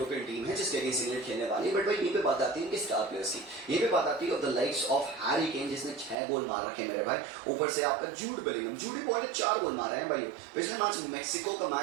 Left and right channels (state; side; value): drops out; left; at 6.2 s